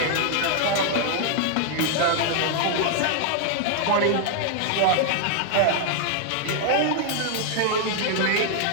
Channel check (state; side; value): different; both; correlation 0.00